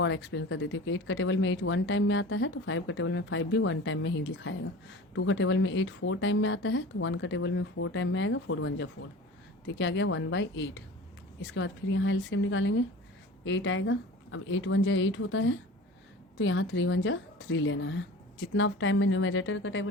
एक्सप्लेन कर देती हूँ कि 8 का टेबल में 8 1 टाइम में आता है तो 5 का टेबल में 5 भी 1 टाइम में ही लिखाएगा। 2 का टेबल में 8 4 टाइम में आता है तो 1 का टेबल में 4 टाइम में आएगा, 4 1 जा 4, तो क्या आ गया 1/8। इसके बाद फिर यहाँ एलसीएम निकालेंगे, 8 आएगा। अब 8 1 जा 8 होता है तो यहाँ 3 1 जा 3 लेना है। जितना टाइम में न्यूमरेटर का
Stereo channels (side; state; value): both; normal; correlation 0.38